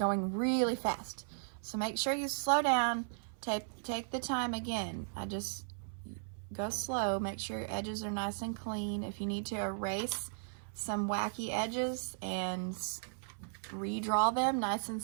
really fast. So make sure you slow down, take the time again. I just go slow, make sure your edges are nice and clean. If you need to erase some wacky edges and redraw them nice and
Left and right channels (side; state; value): left; silent; 54 dB below the other